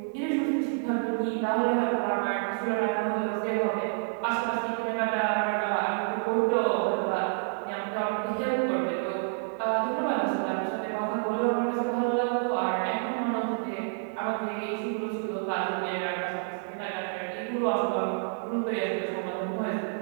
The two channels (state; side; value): silent; left; digital silence